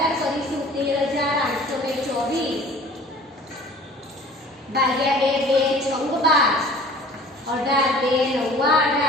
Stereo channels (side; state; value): both; normal; correlation 0.47